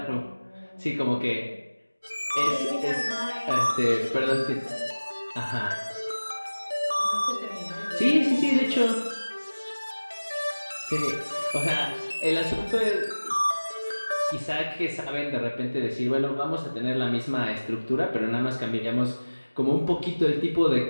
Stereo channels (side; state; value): both; inverted; correlation -1.00